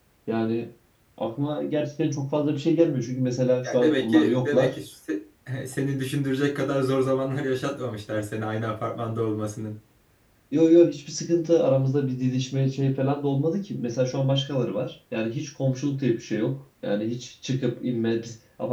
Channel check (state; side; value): identical; both; correlation 1.00